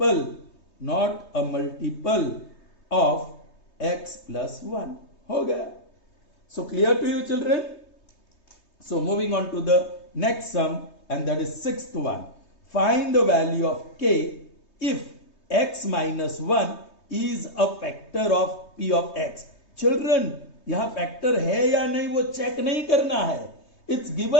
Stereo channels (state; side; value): late; right; 3.2 ms